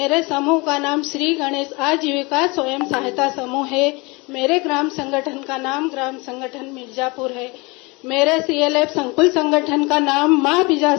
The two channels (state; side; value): quieter; right; 26.2 dB